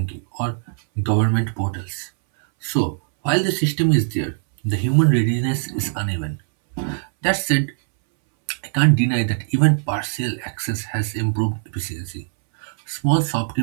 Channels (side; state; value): left; silent; 65 dB below the other